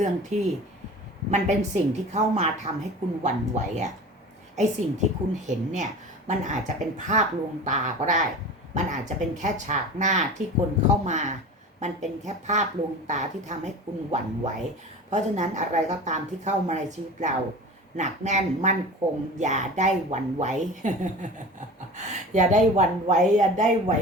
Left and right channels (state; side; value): normal; both; correlation 0.36